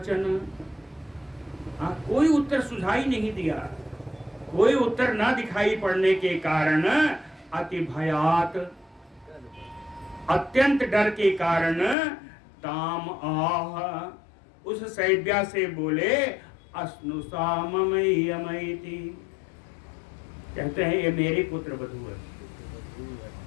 हाँ, कोई उत्तर सुझाई नहीं दिया। कोई उत्तर ना दिखाई पड़ने के कारण अति भयात, अत्यंत डर के कारण ताम आह, उस सैब्या से बोले अस्नुषा ममयमयति, कहते हैं ये मेरी पुत्र वधू है।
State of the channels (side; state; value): right; drops out; at 12.0 s